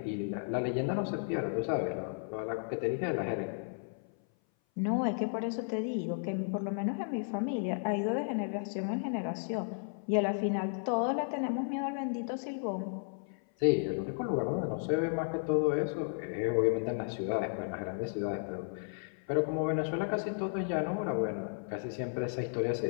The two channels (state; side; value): silent; right; 55 dB below the other